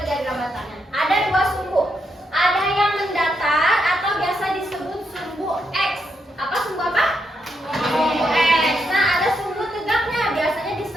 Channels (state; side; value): normal; both; correlation 0.80